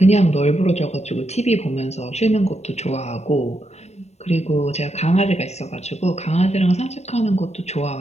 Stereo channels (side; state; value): right; late; 0.32 ms